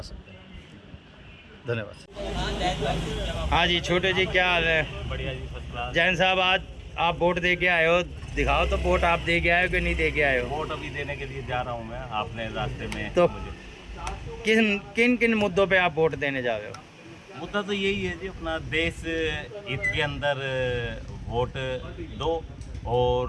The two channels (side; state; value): both; identical; correlation 1.00